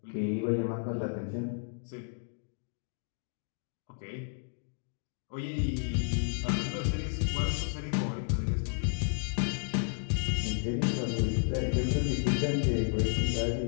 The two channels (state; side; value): silent; right; digital silence